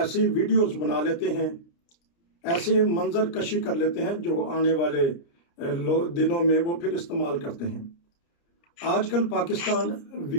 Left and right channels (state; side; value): late; right; 29 ms